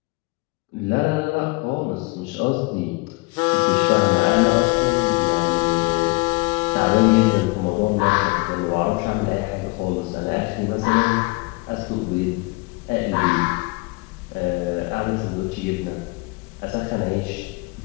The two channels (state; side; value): quieter; right; 26.8 dB